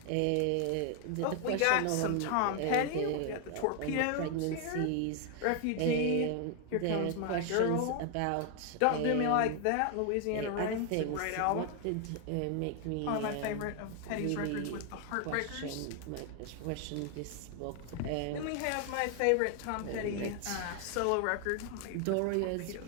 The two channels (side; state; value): both; different; correlation 0.01